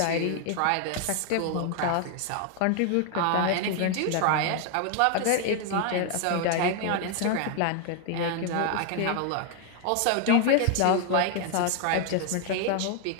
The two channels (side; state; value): both; different; correlation 0.00